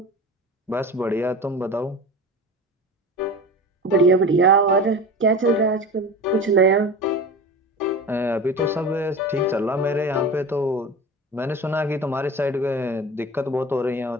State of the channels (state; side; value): normal; both; correlation 0.32